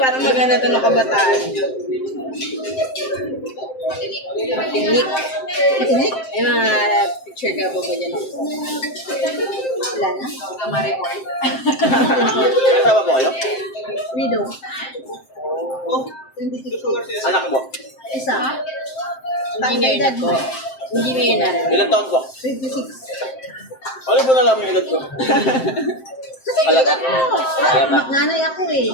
maganda to ng kabataan. Matinik. Matinik? May mga picture ka ba ba dyan? Wala na. Ma-report. Kasama po kayo? Widow. Anak mo? Isa. Engineer na po. Engineer na rin. Ilang taon po? 26. Ano po nalaman yung edad ko? Alata. Nanay ako eh.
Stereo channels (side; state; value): right; late; 7.7 ms